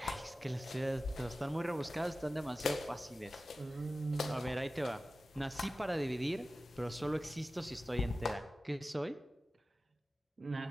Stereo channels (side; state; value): both; normal; correlation 0.95